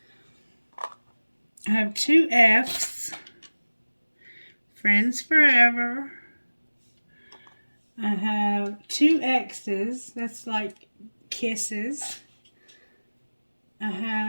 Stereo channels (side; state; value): both; inverted; correlation -1.00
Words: I have 2 F's. friends forever. I have 2 X's. That's like kisses. I